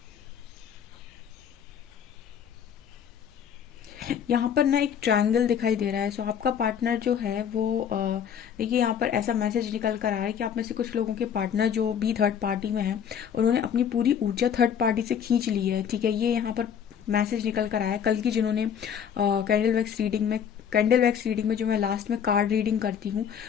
यहाँ पर ना एक ट्रायंगल दिखाई दे रहा है। सो आपका पार्टनर जो है वो देखिए, यहाँ पर ऐसा मैसेज निकल कर आया है कि आप में से कुछ लोगों के पार्टनर जो भी थर्ड पार्टी में हैं, उन्होंने अपनी पूरी ऊर्जा थर्ड पार्टी से खींच ली है। ठीक है, ये यहाँ पर मैसेज निकल कर आया है। कल की जिन्होंने कैंडल वैक्स रीडिंग में जो मैं लास्ट में कार्ड रीडिंग करती हूँ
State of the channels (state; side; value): quieter; right; 8.2 dB